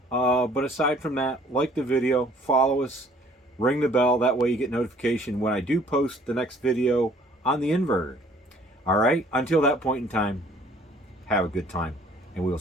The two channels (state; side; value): normal; both; correlation 0.56